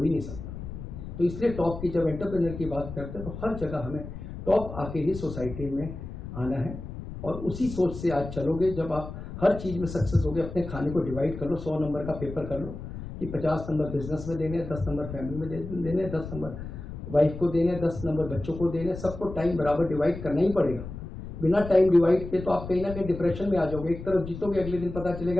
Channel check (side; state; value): left; noise; rumble, 10 dB below the sound